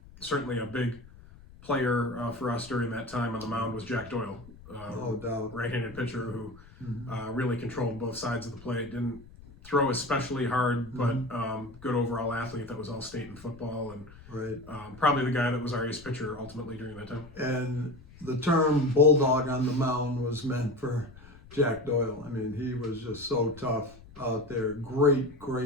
Certainly a big player for us during that time on the mound was Jack Doyle. No doubt. Right-handed pitcher who really controlled both sides of the plate. Didn't throw especially hard, but good overall athlete that was all state in football, and probably the guy that was our ace pitcher ultimately during that time. And the term bulldog on the mound was meant for Jack Doyle. I mean, he was just so tough out there.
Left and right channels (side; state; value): left; noise; rumble, 20 dB below the sound